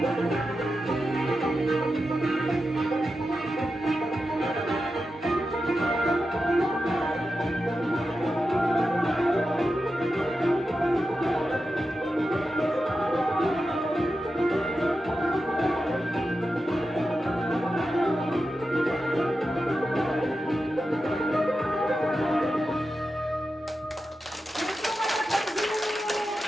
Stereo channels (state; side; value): normal; both; correlation 0.90